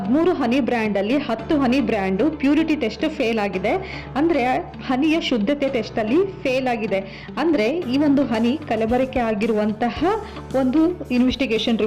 ಹನಿ ಬ್ರ್ಯಾಂಡ್ ಅಲ್ಲಿ 10 ಹನಿ ಬ್ರ್ಯಾಂಡು ಪ್ಯೂರಿಟಿ ಟೆಸ್ಟ್ ಫೇಲ್ ಆಗಿದೆ. ಅಂದ್ರೆ ಹನಿಯ ಶುದ್ಧತೆ ಟೆಸ್ಟ್ ಅಲ್ಲಿ ಫೇಲ್ ಆಗಿದೆ. ಅಂದ್ರೆ ಈ ಒಂದು ಹನಿ ಕಲಬೆರಕೆ ಆಗಿರುವಂತಹ ಒಂದು ಇನ್ವೆಸ್ಟಿಗೇಷನ್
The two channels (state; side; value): identical; both; correlation 1.00